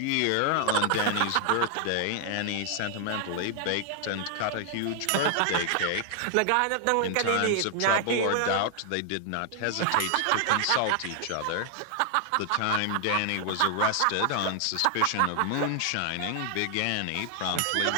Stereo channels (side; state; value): both; different; correlation 0.00